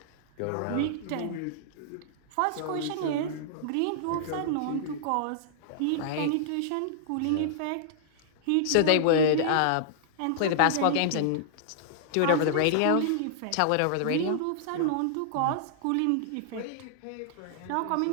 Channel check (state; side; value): different; both; correlation -0.01